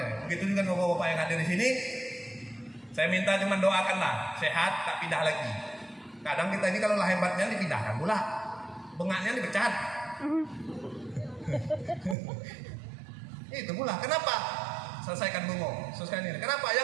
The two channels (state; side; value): drops out; left; at 12.2 s